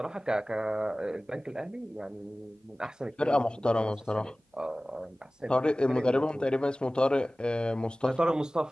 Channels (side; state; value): both; normal; correlation 0.98